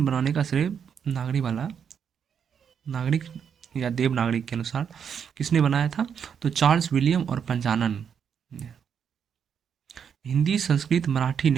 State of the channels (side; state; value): left; quieter; 7.5 dB